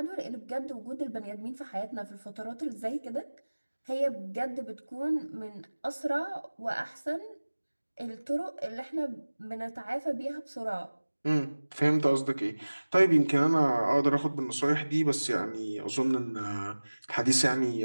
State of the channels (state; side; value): inverted; both; correlation -1.00